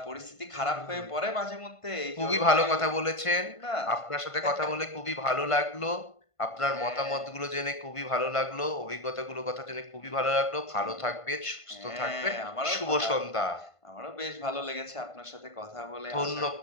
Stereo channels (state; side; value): late; right; 1.5 ms